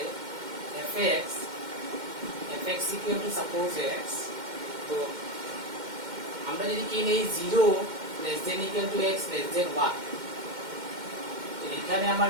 fx equal to suppose x, তো আমরা যদি কি নেই 0 less than equal to x less than 1, এখানে আমার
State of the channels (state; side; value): late; left; 2.1 ms